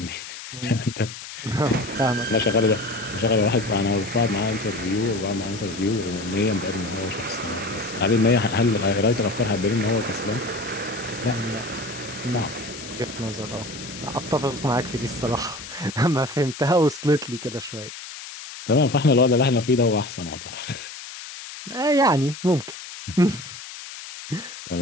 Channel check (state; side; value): noise; left; hiss, 12 dB below the sound